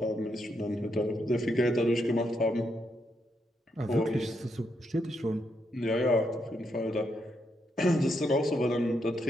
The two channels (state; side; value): normal; both; correlation 0.80